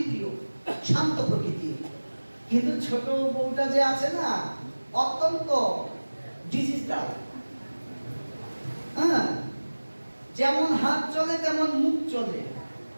শান্ত প্রকৃতির। কিন্তু ছোট বউটা যে আছে না, অত্যন্ত ডিজিটাল। হ্যাঁ, যেমন হাত চলে তেমন মুখ চলে।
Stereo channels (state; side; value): inverted; both; correlation -1.00